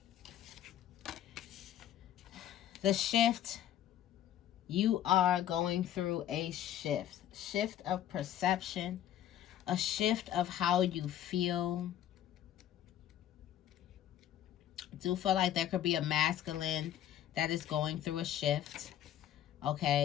The shift. You are going through a shift. Shift of perception. A shift of how you feel. I do feel like there could be a masculine that is going through a shift.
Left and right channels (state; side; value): quieter; right; 11.4 dB